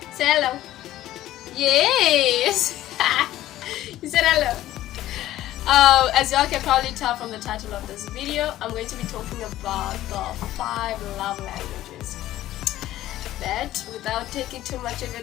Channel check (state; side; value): quieter; right; 14.3 dB